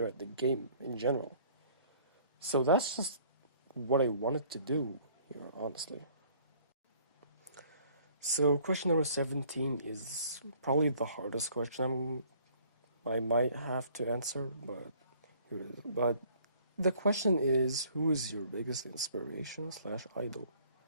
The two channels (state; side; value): inverted; both; correlation -0.58